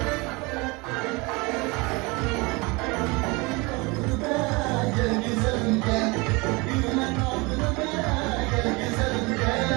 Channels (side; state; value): left; quieter; 26.0 dB